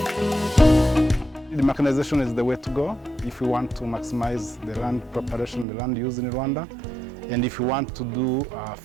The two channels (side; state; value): left; drops out; at 5.7 s